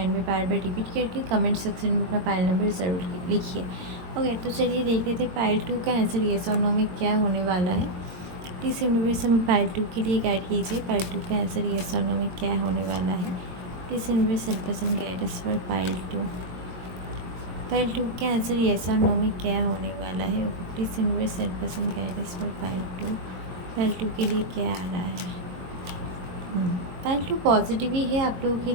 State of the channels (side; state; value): left; late; 22 ms